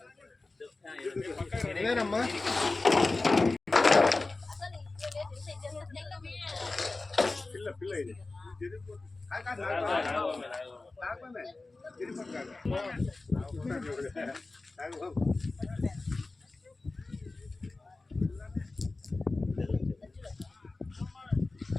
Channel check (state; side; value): quieter; right; 3.3 dB